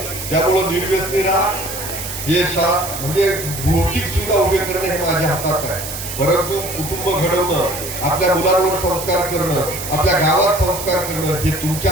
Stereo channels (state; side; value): noise; right; hiss, 8 dB below the sound